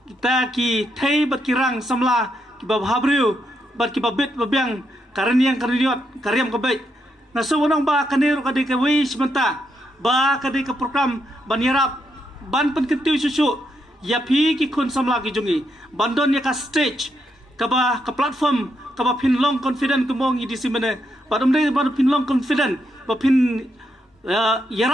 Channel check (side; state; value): both; normal; correlation 0.80